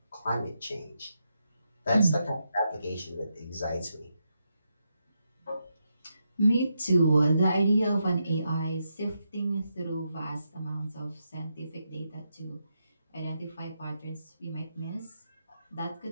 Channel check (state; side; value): inverted; both; correlation -0.83